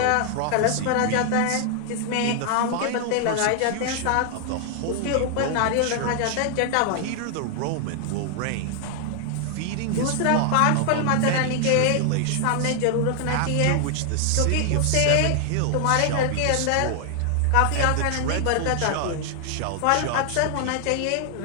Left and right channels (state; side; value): different; both; correlation 0.00